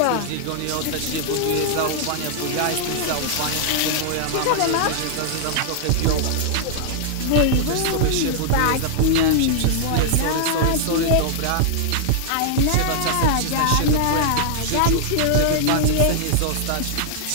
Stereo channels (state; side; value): different; both; correlation -0.01